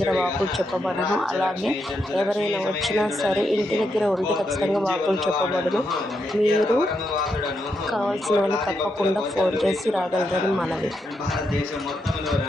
వాక్కులు చెప్పబడను. అలాగే ఎవరైనా వచ్చినా సరే ఇంటి దగ్గర ఉండి ఖచ్చితంగా వాక్కులు చెప్పబడను. మీరు కావాల్సిన వాళ్ళు తప్పకుండా ఫోన్ చేసి రాగలరని మనవి. భారతదేశం మొత్తంలో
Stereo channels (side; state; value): both; normal; correlation 0.82